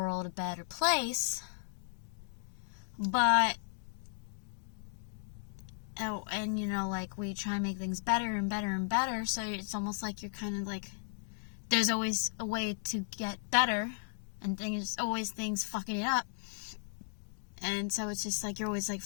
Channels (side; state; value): right; silent; digital silence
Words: a better place, but, oh, and you know, like, we try and make things better and better and better, so it's almost like you're kind of like, there's always a way to get better, and there's always things fucking it up. And so it's just like you're always like